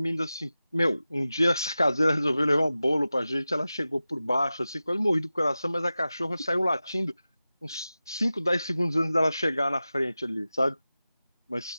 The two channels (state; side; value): inverted; both; correlation -0.94